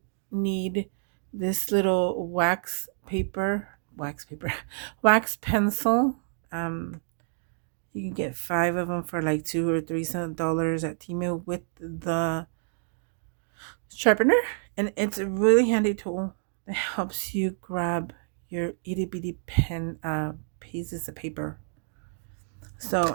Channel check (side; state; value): left; silent; digital silence